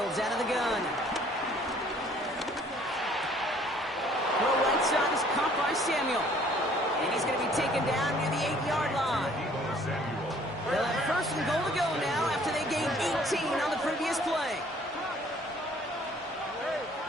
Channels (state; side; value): normal; both; correlation 0.57